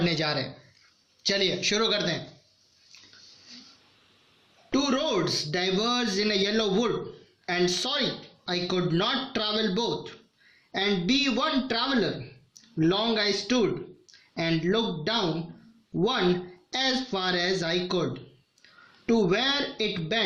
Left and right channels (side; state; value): both; identical; correlation 1.00